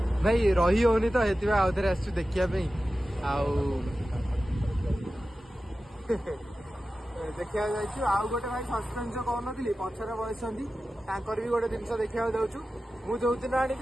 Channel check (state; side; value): normal; both; correlation 0.94